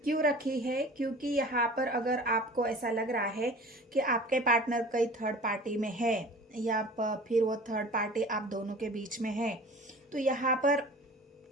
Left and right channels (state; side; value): normal; both; correlation 0.42